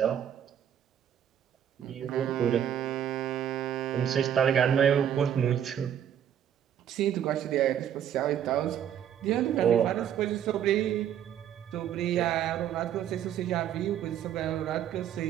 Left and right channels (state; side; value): quieter; left; 9.8 dB